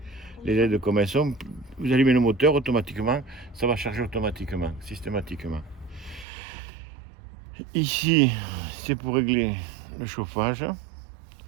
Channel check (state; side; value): drops out; left; at 6.2 s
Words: LED comme elles sont. Vous allumez le moteur automatiquement. Ça va charger automatiquement, systématiquement. Ici, c'est pour régler le chauffage.